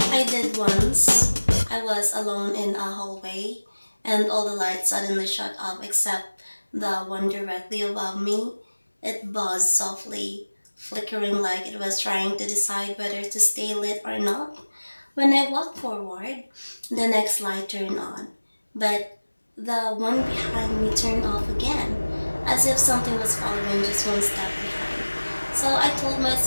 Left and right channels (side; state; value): both; inverted; correlation -1.00